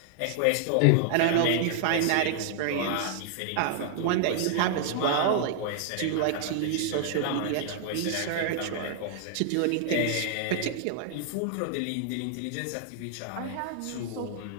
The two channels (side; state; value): both; different; correlation -0.01